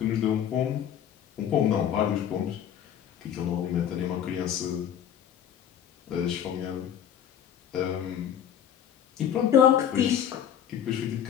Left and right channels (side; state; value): right; quieter; 9.5 dB